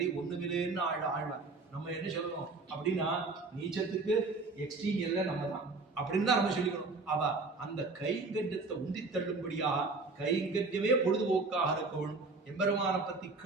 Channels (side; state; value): left; quieter; 3.7 dB